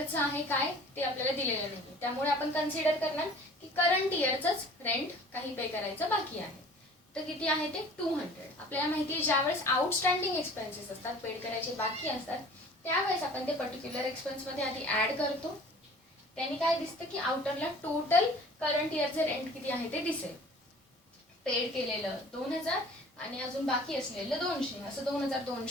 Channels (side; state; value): both; normal; correlation 0.47